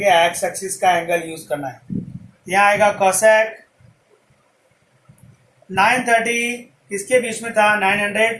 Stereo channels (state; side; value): identical; both; correlation 1.00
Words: एक्स एक्सिस का एंगल यूज करना है। यहाँ आएगा cosec 930 किसके बीच में था?